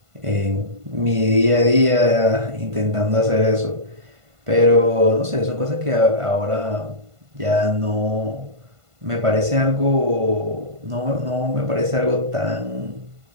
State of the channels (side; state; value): left; late; 1.5 ms